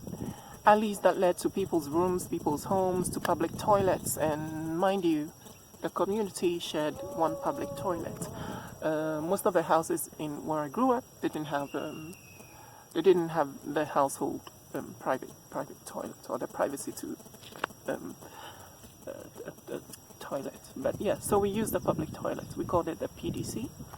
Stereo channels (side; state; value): both; identical; correlation 1.00